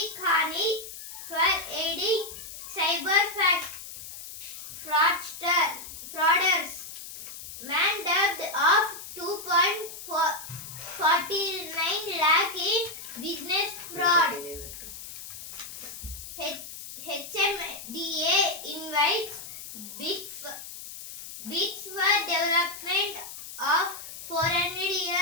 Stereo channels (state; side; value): noise; left; hiss, 12 dB below the sound